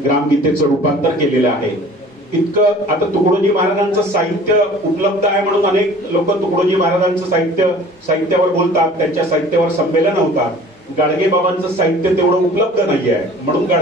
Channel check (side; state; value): both; normal; correlation 0.47